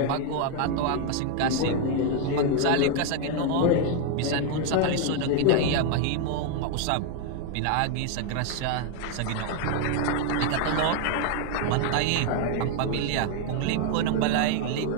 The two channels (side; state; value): both; different; correlation 0.01